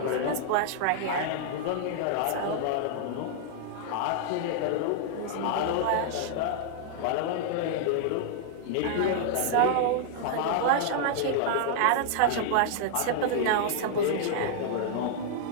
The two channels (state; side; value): different; both; correlation -0.01